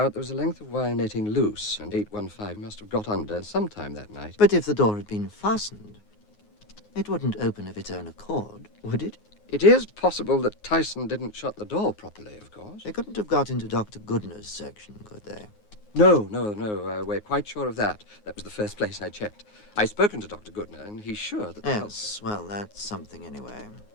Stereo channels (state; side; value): late; right; 9.5 ms